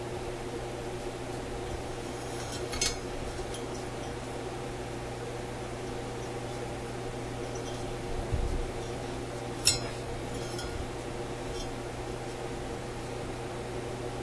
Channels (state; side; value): identical; both; correlation 1.00